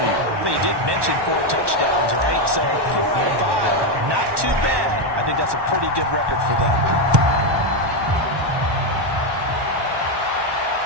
But you did mention 4 touchdowns, right? So 4 out of 5, not too bad. I think that's a pretty good record for them.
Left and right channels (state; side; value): late; left; 1.2 ms